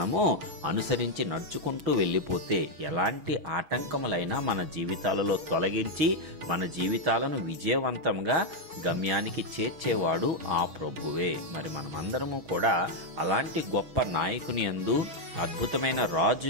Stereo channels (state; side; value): late; left; 6.4 ms